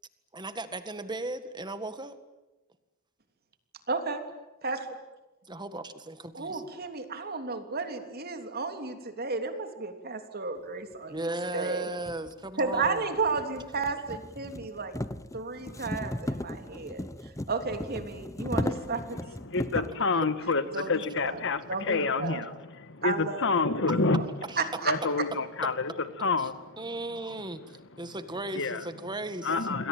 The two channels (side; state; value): both; normal; correlation -0.04